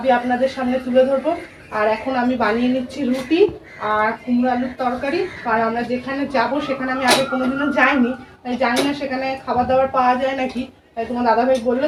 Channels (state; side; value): identical; both; correlation 1.00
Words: আপনাদের সামনে তুলে ধরবো। আর এখন আমি বানিয়ে নিচ্ছি রুটি আর কুমড়ো আলুর তরকারি। কারণ আমরা যেখানে যাব সেখানে আমি আগে কোনোদিনও যাইনি, জানি না সেখানে খাবার দাবার পাওয়া যায় নাকি। তাই তোমার দাদাভাই বললো